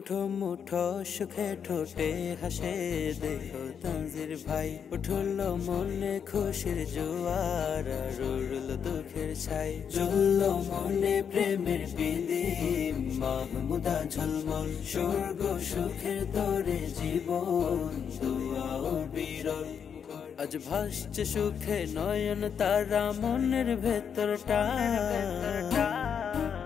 মুঠো সুখে ঠোঁটে হাসে দেখো তানজির ভাই, উঠল মনে খুশির জোয়ার আর উড়ল দুঃখের ছাই। জ্বলল মনে প্রেমের প্রদীপ, মাহমুদা ঝলমল স্বর্গ সুখের তরে জীবন দুয়া ও বিরল। আজ ভাসছে সুখে নয়ন তারা মনের ভেতরটা।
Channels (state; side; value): quieter; right; 7.4 dB